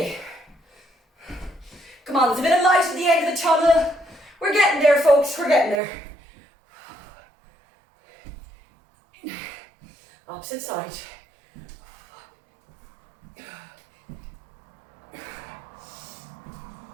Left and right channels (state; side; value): drops out; left; at 5.8 s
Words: Come on, there's a bit of light at the end of the tunnel. We're getting there, folks. We're getting there. Opposite side.